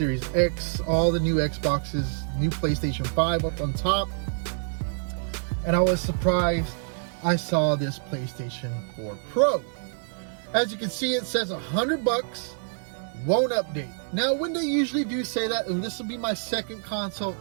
X, all the new Xboxes, new PlayStation 5 up on top. And I was surprised I saw this PlayStation 4 Pro. As you can see, it says $100, won't update. Now, when they usually do say that, and this will be my second console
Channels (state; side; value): silent; left; 60 dB below the other